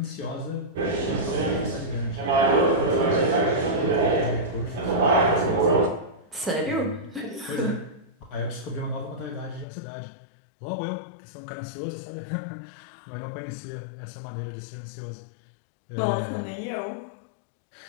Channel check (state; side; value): drops out; right; at 9.7 s